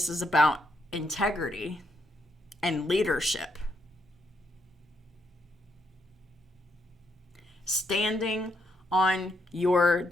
is about integrity and leadership. Standing on your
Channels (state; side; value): normal; both; correlation 0.76